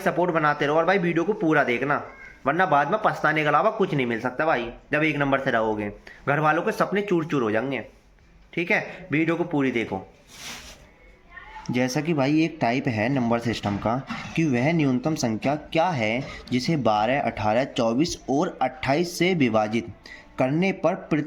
सपोर्ट बनाते रहो और भाई वीडियो को पूरा देखना, वरना बाद में पछताने के अलावा कुछ नहीं मिल सकता भाई। जब 1 नंबर से रहोगे घर वालों के सपने चूर चूर हो जाएंगे। ठीक है, वीडियो को पूरी देखो। जैसा कि भाई एक टाइप है नंबर सिस्टम का कि वह न्यूनतम संख्या क्या है जिसे 12, 18, 24 और 28 से विभाजित करने पर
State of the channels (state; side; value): identical; both; correlation 1.00